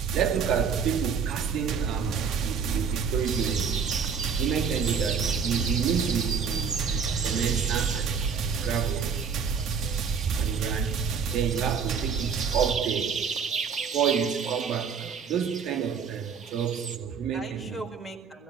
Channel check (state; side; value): quieter; left; 6.4 dB